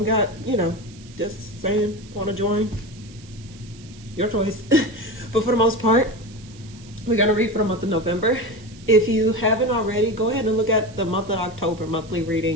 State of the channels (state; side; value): noise; right; hiss, 23 dB below the sound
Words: got, just saying, want to join? Your choice. But for the most part, we're going to read for the month of November. If you haven't already, go ahead and look at the month of October monthly